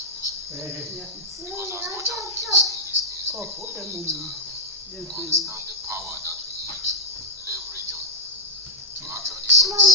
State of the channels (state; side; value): normal; both; correlation -0.03